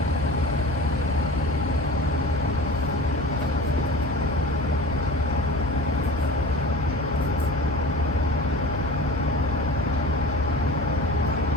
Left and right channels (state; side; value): normal; both; correlation 0.37